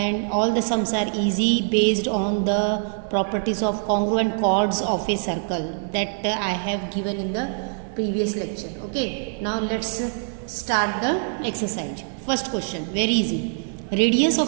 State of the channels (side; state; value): left; silent; digital silence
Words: all the sums are easy based on the properties of congruent chords of a circle that I have given in the previous lecture. Okay, now let's start the exercise. First question, very easy. Radius